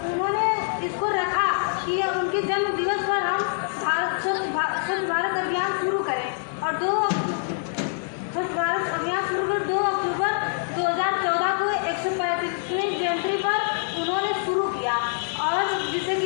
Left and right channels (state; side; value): silent; right; digital silence